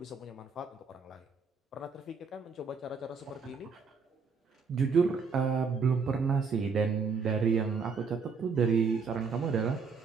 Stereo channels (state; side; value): quieter; left; 5.2 dB